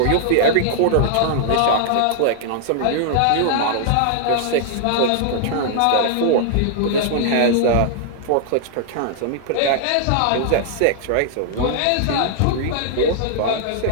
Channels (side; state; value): both; different; correlation 0.00